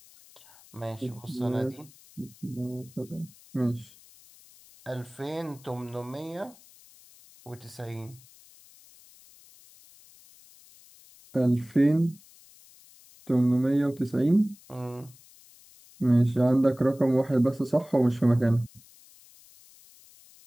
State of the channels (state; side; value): noise; left; hiss, 25 dB below the sound